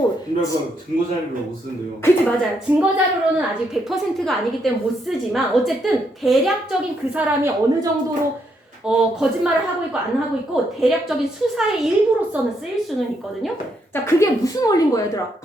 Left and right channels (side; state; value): both; normal; correlation 0.76